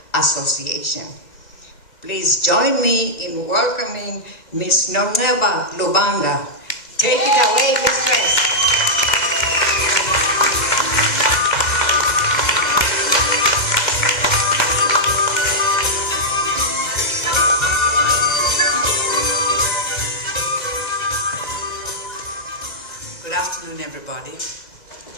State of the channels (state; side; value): late; right; 2.1 ms